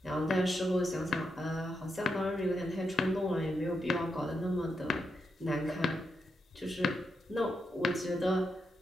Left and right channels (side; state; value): both; normal; correlation 0.83